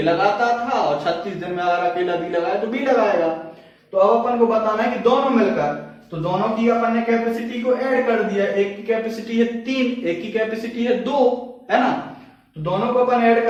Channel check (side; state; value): both; identical; correlation 1.00